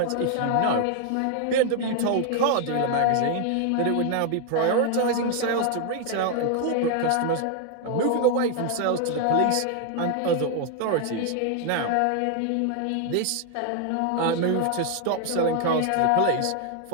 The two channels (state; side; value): different; both; correlation 0.00